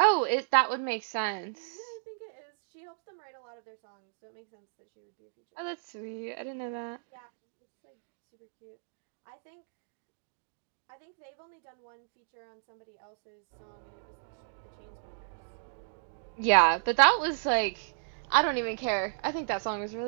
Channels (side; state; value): left; silent; digital silence